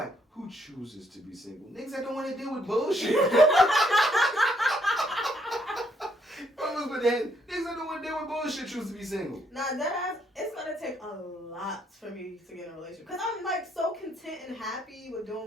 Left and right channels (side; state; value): both; normal; correlation 0.71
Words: like, who chooses to be single? Niggas that don't want to deal with bullshit. Niggas that don't want to deal with bullshit choose to be single. Nah, that ass, it's gonna take a lot for me to get in a relationship. Because I'm like so content and happy with doing